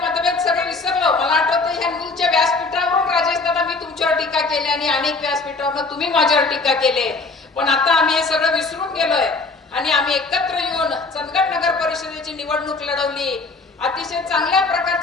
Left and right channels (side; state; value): right; quieter; 3.8 dB